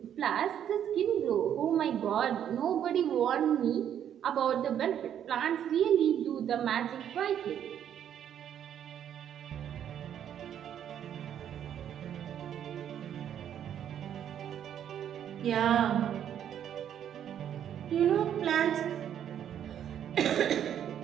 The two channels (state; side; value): quieter; left; 9.7 dB